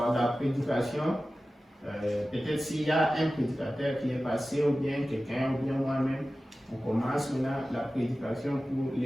la prédication. Peut-être s'il y a un prédicateur qui est passé, ou bien quelqu'un, ou bien moi-même, on commence maintenant la prédication pour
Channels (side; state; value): both; normal; correlation 0.95